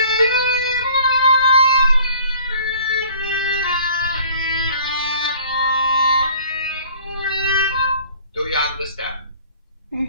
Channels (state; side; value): inverted; both; correlation -0.51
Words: Do you understand?